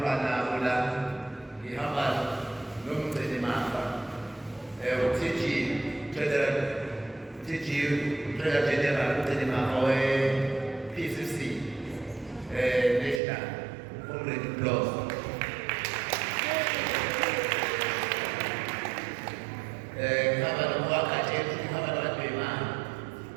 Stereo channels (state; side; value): drops out; left; at 13.2 s